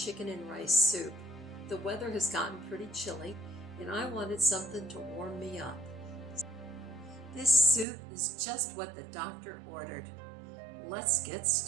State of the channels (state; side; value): drops out; left; at 7.9 s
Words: and rice soup. The weather has gotten pretty chilly and I wanted something to warm me up. This soup is just what the doctor ordered. Let's get